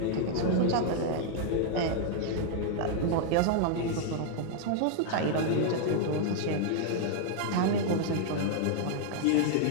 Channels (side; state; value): both; different; correlation 0.00